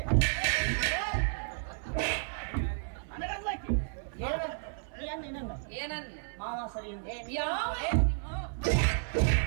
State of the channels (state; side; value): silent; left; 56 dB below the other